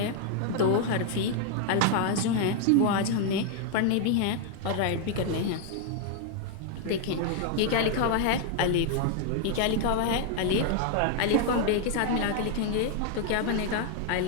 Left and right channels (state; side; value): different; both; correlation 0.00